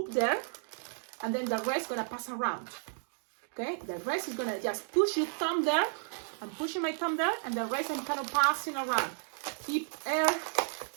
there, and then the rest gonna pass around. Okay, the rest is gonna just push your thumb there. I'm pushing my thumb there, and the rest I'm kind of passing around. Keep air,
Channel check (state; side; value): silent; left; 56 dB below the other